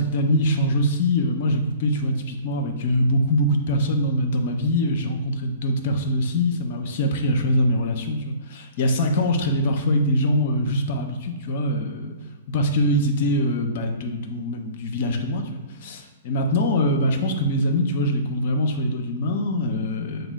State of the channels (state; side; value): inverted; both; correlation -0.47